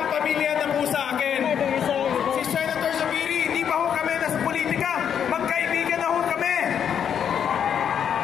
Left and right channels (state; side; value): quieter; right; 8.3 dB